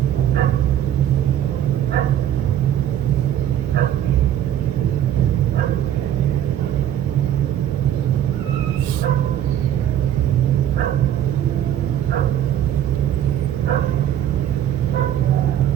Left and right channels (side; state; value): left; quieter; 10.9 dB